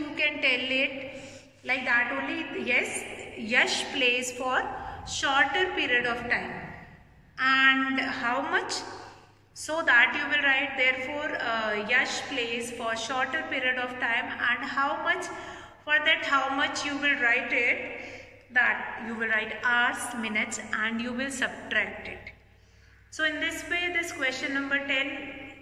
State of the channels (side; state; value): both; identical; correlation 1.00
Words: can tell it like that only. Yes, Yash plays for shorter period of time. And how much? So that you will write, therefore Yash plays for shorter period of time, and how much? For that how much you will write it, that you will write hours, minutes, and you will subtract it. So in this way this question number 10